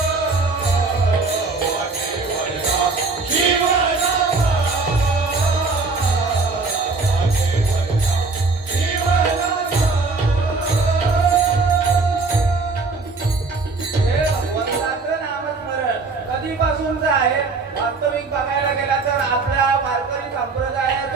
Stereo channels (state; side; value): quieter; left; 3.9 dB